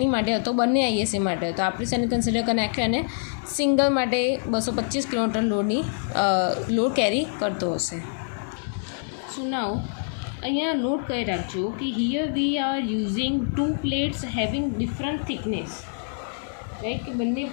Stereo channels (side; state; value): right; silent; digital silence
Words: માટે હતો, બંને ISA માટે હતો. આપણે શેને કન્સિડર કરી નાખ્યો અને સિંગલ માટે 225 કિલોમીટર લોડ કેરી કરતો હશે. સો નાઉ અહીંયા નોટ કરી રાખજો કે here we are using 2 plates having different thickness, right. કે બંને